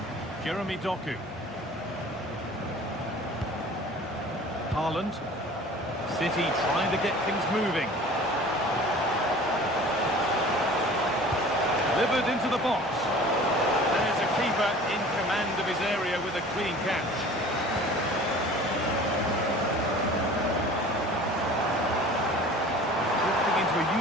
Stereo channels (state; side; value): normal; both; correlation 0.44